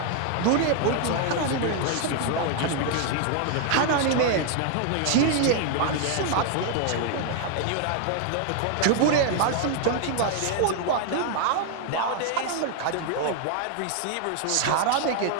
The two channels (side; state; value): both; different; correlation 0.00